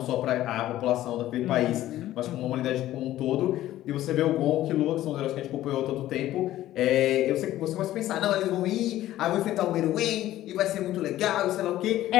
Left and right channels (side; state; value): right; quieter; 14.2 dB